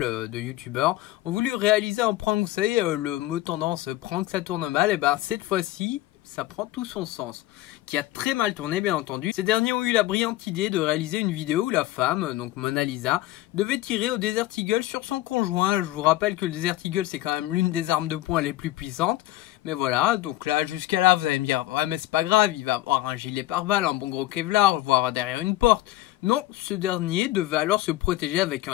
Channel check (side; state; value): right; quieter; 16.0 dB